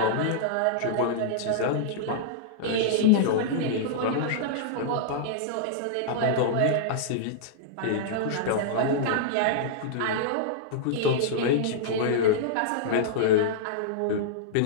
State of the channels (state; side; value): different; both; correlation -0.02